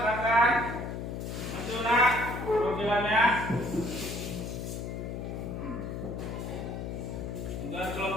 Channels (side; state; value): left; noise; hum, 5 dB below the sound